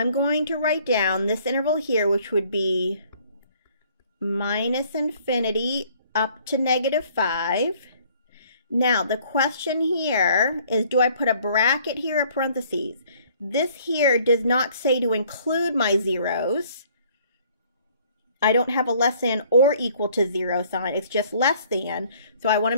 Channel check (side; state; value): both; inverted; correlation -0.59